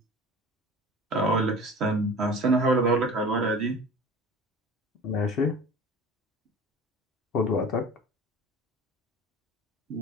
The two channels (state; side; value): normal; both; correlation 0.39